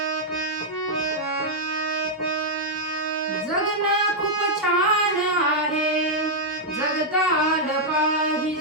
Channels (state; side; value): normal; both; correlation -0.04